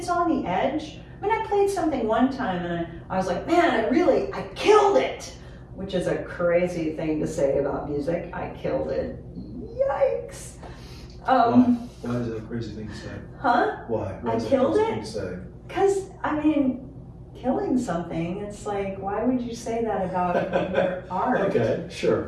on the edge. I played something one time and I was like, man, I killed it, which is a crazy thing to say about music. I killed it. Yikes. Why is that a crazy thing to say? Huh? Why? I killed it? Because, killing something, it's like, why would you say that about your art? Okay,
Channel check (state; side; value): identical; both; correlation 1.00